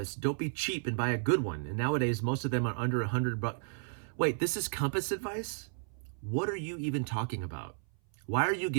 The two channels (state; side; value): silent; left; 56 dB below the other